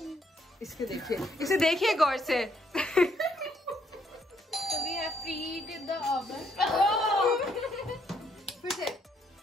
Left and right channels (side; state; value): both; normal; correlation 0.71